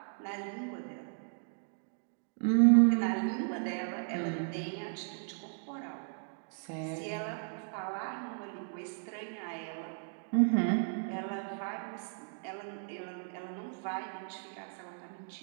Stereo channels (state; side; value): silent; left; digital silence